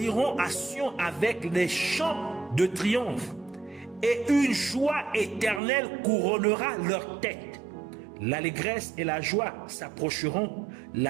iront à Sion avec les chants de triomphe. Et une joie éternelle couronnera leur tête. L'allégresse et la joie s'approcheront.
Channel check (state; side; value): drops out; left; at 5.6 s